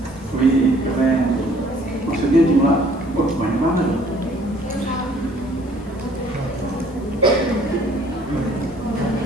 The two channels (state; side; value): noise; left; hiss, 28 dB below the sound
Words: Wih, keren. Maksudnya jumlah banyak banget.